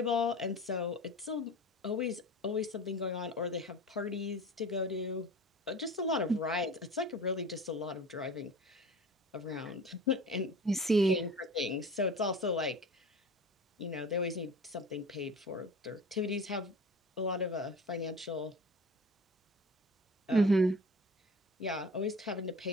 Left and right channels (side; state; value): both; normal; correlation 0.38